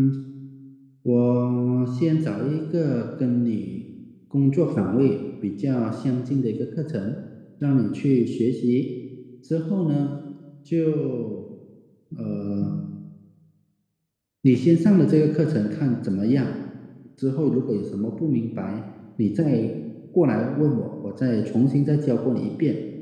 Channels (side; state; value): both; identical; correlation 1.00